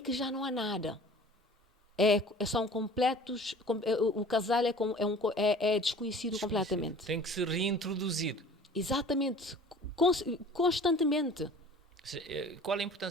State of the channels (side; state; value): both; normal; correlation 0.46